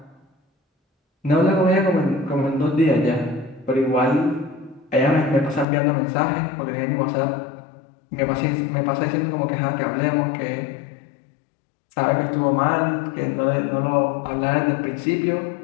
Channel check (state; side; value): drops out; right; at 5.7 s